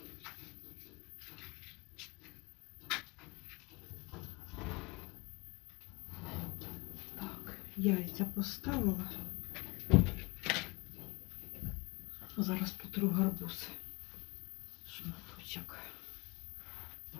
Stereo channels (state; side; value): quieter; right; 25.8 dB